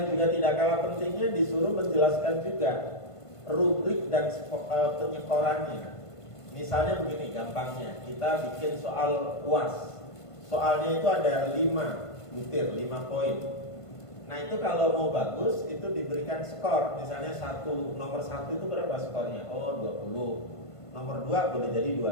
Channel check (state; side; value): late; right; 1.5 ms